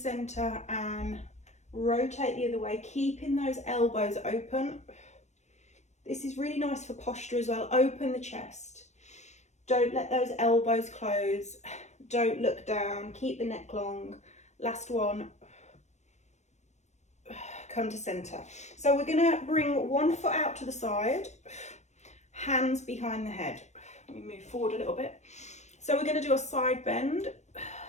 and rotate the other way, keeping those elbows open. This is really nice for posture as well. Open the chest. Don't let those elbows close. Don't look down. Keep the neck long. Last one. Come to center. So we're going to bring one foot out to the side, hands behind the head. Let me move forward a little bit. So we're going to do a side bend.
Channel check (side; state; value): right; late; 0.33 ms